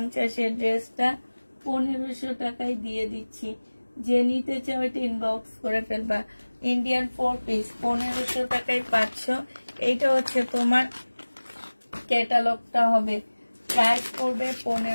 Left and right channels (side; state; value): both; inverted; correlation -1.00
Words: ড্রেসটা 1500 টাকায় দিয়ে দিচ্ছি। যে নিতে চাও এটা ইনবক্স করে ফেলবা। ইন্ডিয়ান 4 পিস 1500 টাকায় পাচ্ছ। এইটা হচ্ছে তোমার ক্যাটালগটা হবে। প্রাইস পড়বে